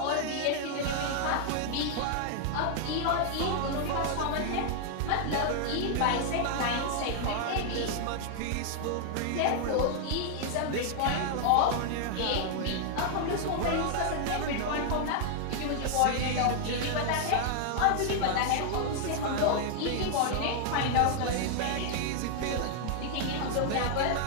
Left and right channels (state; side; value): different; both; correlation 0.00